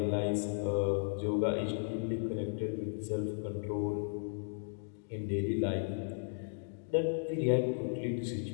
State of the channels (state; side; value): silent; right; digital silence